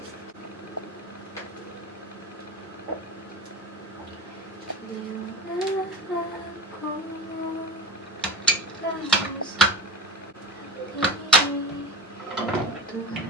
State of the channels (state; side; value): normal; both; correlation 0.28